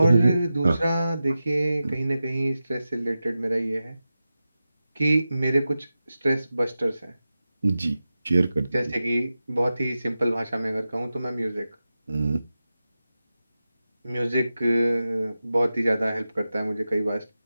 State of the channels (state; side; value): inverted; both; correlation -0.93